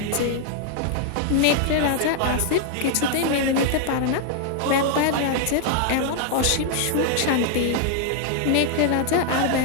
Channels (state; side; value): different; both; correlation 0.00